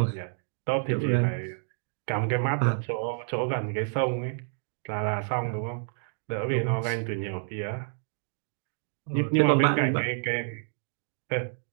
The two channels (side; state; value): left; silent; digital silence